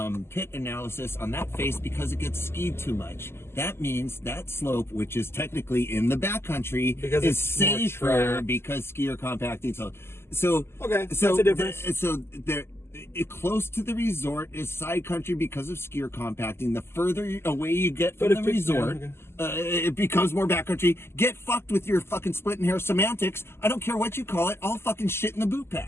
pit analysis on that face because it gets skied too much. That means that slope, which is technically in the backcountry, is safer because skier compacting. So okay, that's a difference. Close to the resort is side country because of skier compacting. The further away you get from the resort, it becomes more backcountry. Get fucked with your fucking splitting hair semantics. I don't care what you call it. All fucking shit in the boot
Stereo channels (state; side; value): late; right; 0.12 ms